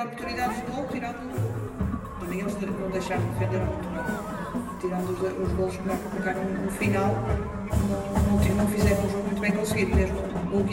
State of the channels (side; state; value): both; identical; correlation 1.00